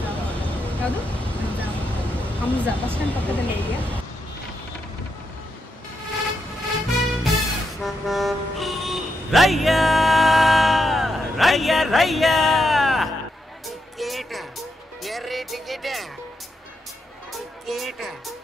ಯಾವುದು? ಹಮ್ಜಾ ಬಸ್ ಸ್ಟ್ಯಾಂಡ್ ಪಕ್ಕದಲ್ಲೇ ಇದೆಯಾ? ರಯ್ಯ ರಯ್ಯ ರಯ್ಯ ಟಿಕೆಟ್ ಎರ್ರಿ ಟಿಕೆಟ್ ಟಿಕೆಟ್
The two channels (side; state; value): both; normal; correlation 0.83